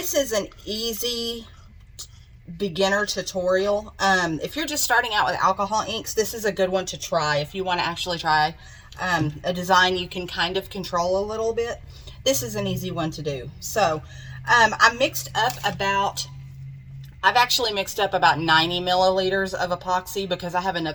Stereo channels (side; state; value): both; identical; correlation 1.00